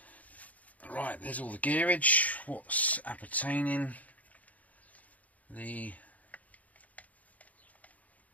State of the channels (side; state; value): right; late; 0.073 ms